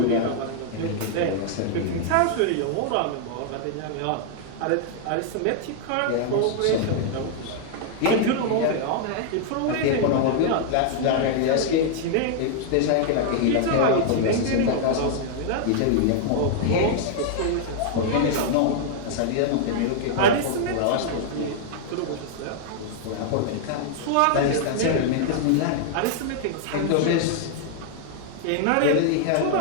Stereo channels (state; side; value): different; both; correlation -0.01